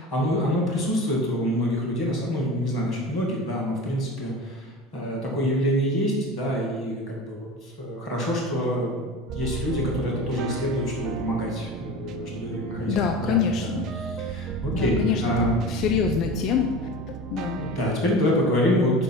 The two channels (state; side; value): normal; both; correlation 0.33